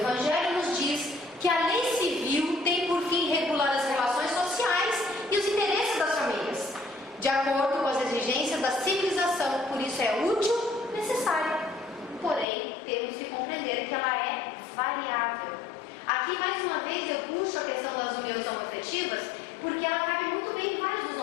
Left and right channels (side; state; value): right; drops out; at 12.5 s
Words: nos diz que a lei civil tem por fim regular as relações sociais e os interesses das famílias, de acordo com as exigências da civilização, por isso é útil, necessária. Porém, temos que compreender que ela é variável. Aqui, mais uma vez, eu puxo a questão das uniões homoafetivas, porque ela cabe muito bem em vários dos